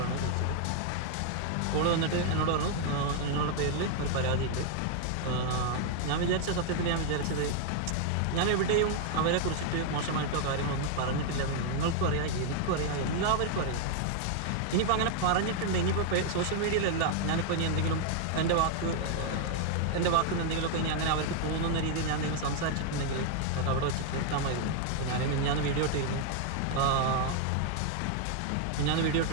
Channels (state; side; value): different; both; correlation 0.00